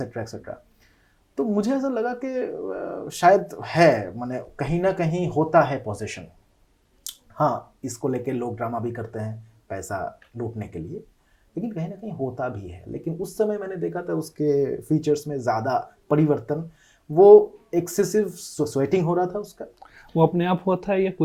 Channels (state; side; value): identical; both; correlation 1.00